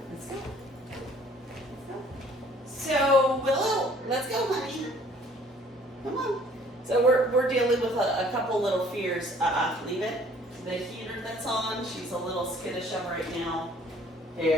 Let's go. So, Willow, let's go, honey. Come on. So we're dealing with a couple little fears. Leave it. The heater that's on, she's a little skittish of right now.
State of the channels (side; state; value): both; normal; correlation 0.57